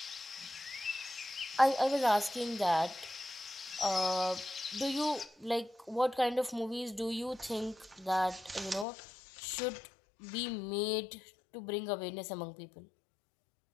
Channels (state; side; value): drops out; right; at 8.8 s